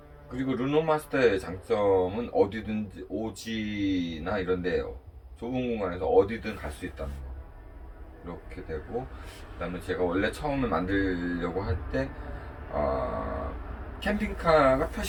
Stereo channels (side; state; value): both; identical; correlation 1.00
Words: 그리고 르노마스터의 장점은 어디든지 오지나 이런데 좁은 공간에서 어디든 갈 수 있다는 거, 이렇게 되고, 그 다음에 제가 원래 처음에 만들려고 할 때 캠핑카가